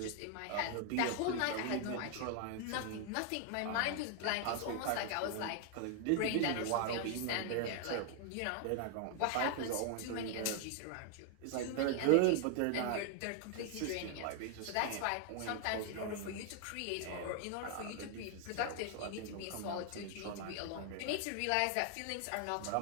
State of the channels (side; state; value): both; different; correlation 0.00